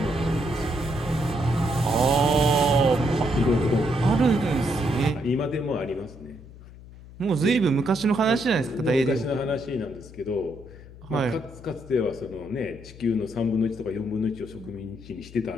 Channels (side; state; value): left; noise; hum, 18 dB below the sound